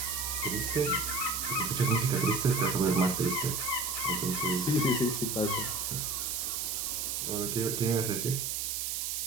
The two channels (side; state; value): right; noise; hiss, 1 dB below the sound